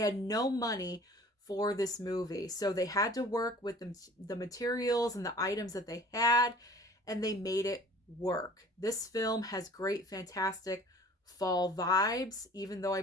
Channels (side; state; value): both; normal; correlation 0.48